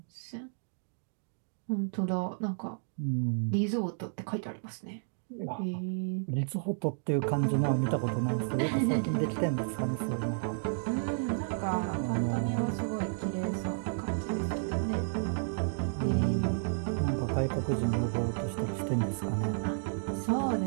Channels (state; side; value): silent; left; digital silence